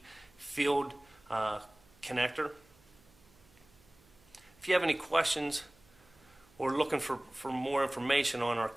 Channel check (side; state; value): right; noise; hum, 29 dB below the sound